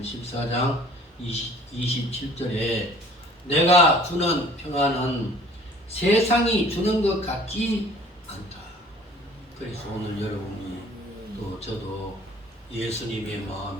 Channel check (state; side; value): normal; both; correlation 0.51